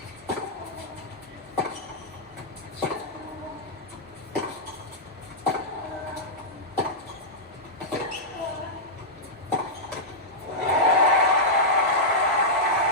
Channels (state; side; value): normal; both; correlation -0.10